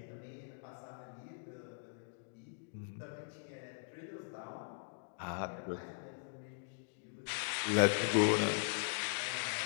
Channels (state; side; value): silent; right; digital silence